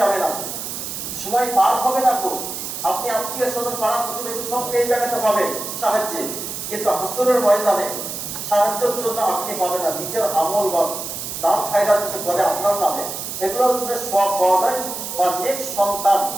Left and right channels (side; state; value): right; noise; hiss, 6 dB below the sound